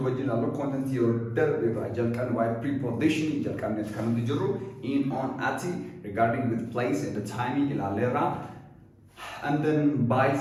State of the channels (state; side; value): identical; both; correlation 1.00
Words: original content here. Why preposition in, on, at, regarding with place and the timing in and then by